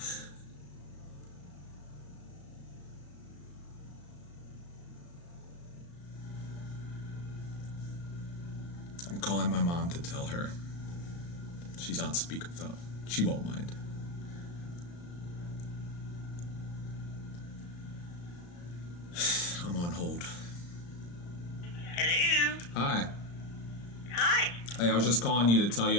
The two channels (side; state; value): right; late; 35 ms